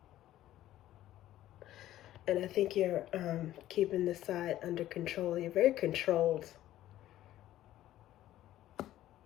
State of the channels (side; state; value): right; quieter; 13.7 dB